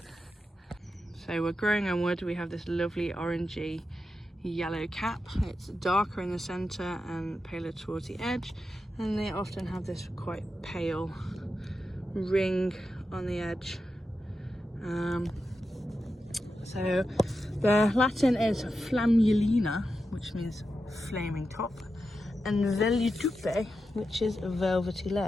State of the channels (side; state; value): both; normal; correlation 0.89